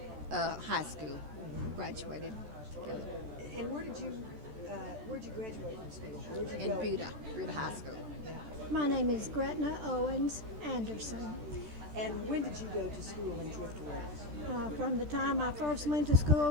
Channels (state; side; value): late; left; 13 ms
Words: high school. Graduated together And where'd you graduate from school? Where'd you in go? Buda High School. Yeah. My name is Gretna Owens Anderson. And when did you go to school in Driftwood? From the time I first went to